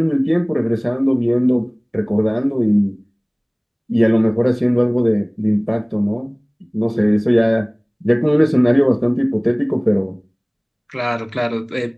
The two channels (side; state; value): both; identical; correlation 1.00